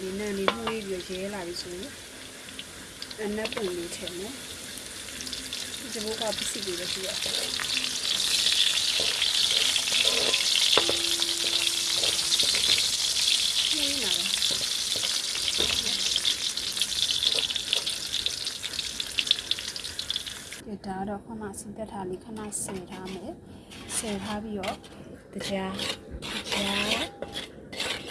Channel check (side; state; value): both; identical; correlation 1.00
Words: နန်းလေးမှုလေးပြီးရဲလာပြီဆိုရင်အနက်ပုံလေးထည့်မယ်ဒီဘက်ကပစ္စည်းတွေလည်းရှိရတယ်နေလာတယ်ဒါတော့ခဏစီတက်ထားလေးခဏဆယ်ထားမယ်ဆယ်ထားပြီးတော့တရား